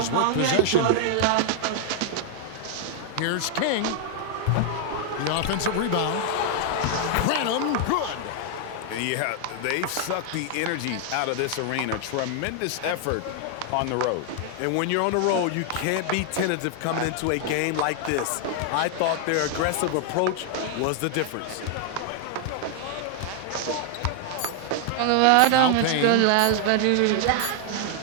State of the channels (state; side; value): different; both; correlation 0.00